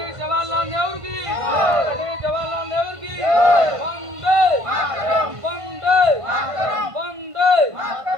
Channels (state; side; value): late; left; 1.5 ms